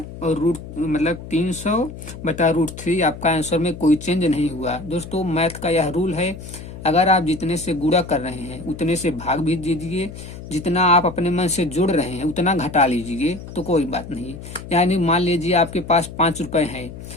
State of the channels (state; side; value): noise; left; hum, 13 dB below the sound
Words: और रूट मतलब 300 बटा √3 आपका आंसर में कोई चेंज नहीं हुआ। दोस्तों मैथ का यह रूल है, अगर आप जितने से गुणा कर रहे हैं उतने से भाग भी दीजिए, जितना आप अपने मन से जोड़ रहे हैं उतना घटा लीजिए, तो कोई बात नहीं। यानी मान लीजिए आपके पास 5 रुपए हैं,